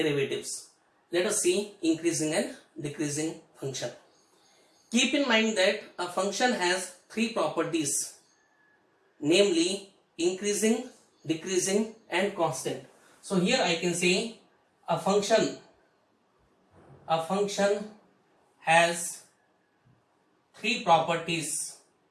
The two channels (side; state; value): both; identical; correlation 1.00